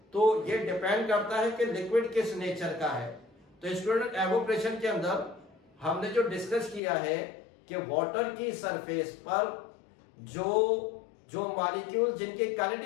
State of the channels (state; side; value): drops out; right; at 6.8 s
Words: तो ये डिपेंड करता है कि लिक्विड किस नेचर का है। तो स्टूडेंट, एवोपरेशन के अंदर हमने जो डिस्कस किया है कि वाटर की सरफेस पर जो मॉलिक्यूल जिनकी